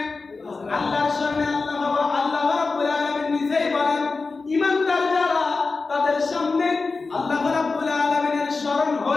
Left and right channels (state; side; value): quieter; right; 4.0 dB